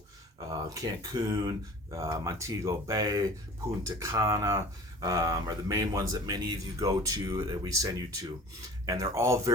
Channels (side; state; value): both; normal; correlation 0.43